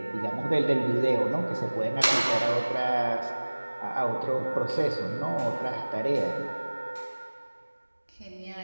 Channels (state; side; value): inverted; both; correlation -1.00